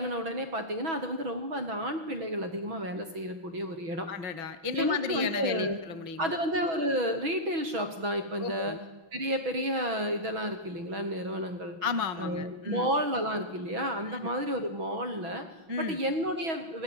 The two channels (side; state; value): left; late; 6.1 ms